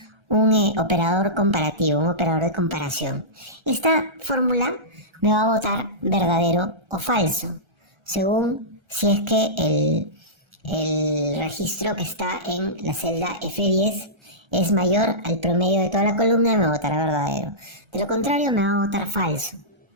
operador comparativo, un operador de comparación. Esta fórmula me va a botar verdadero o falso, según si es que el registro que está en la celda F10 es mayor al promedio de toda la columna y me botará verdadero. De lo contrario, me va a botar falso.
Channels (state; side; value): late; left; 1.3 ms